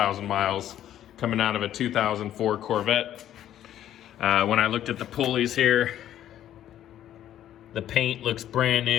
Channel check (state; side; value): quieter; right; 11.6 dB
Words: miles coming out of a 2004 Corvette. When I looked at the pulleys here, the paint looks brand